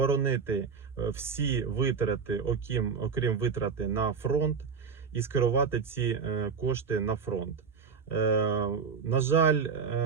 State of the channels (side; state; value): left; quieter; 5.7 dB